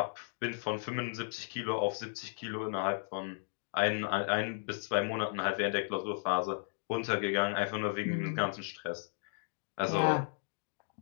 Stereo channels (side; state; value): right; silent; digital silence